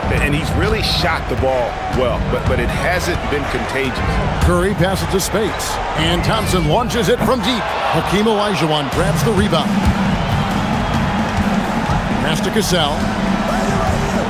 And he's really shot the ball well, but it hasn't been contagious. Curry passes to Spades. And Thompson launches it from deep. Hakeem Olajuwon grabs the rebound. Pass to Cassell.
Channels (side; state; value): both; identical; correlation 1.00